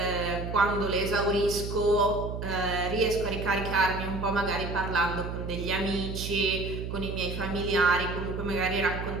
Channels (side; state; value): right; noise; hum, 6 dB below the sound